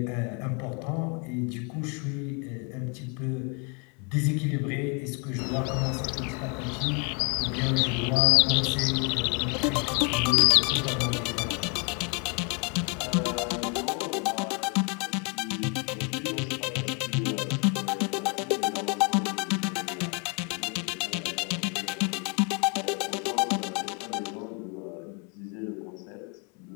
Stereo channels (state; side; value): quieter; right; 35.1 dB